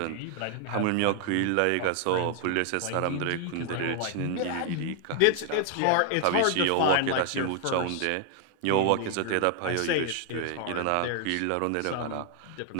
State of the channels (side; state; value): both; different; correlation 0.00